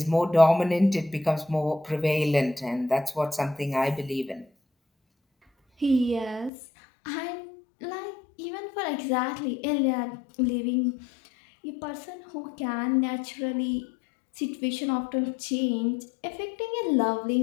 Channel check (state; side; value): drops out; right; at 6.5 s